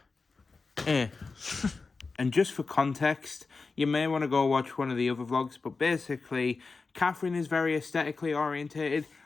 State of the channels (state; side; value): quieter; right; 4.2 dB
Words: And just for context, you may want to go watch one of the other vlogs, but basically, Catherine is very aesthetically orientated.